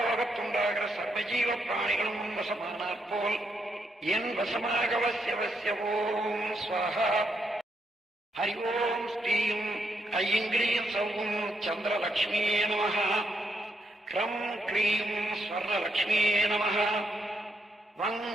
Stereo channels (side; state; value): both; normal; correlation 0.79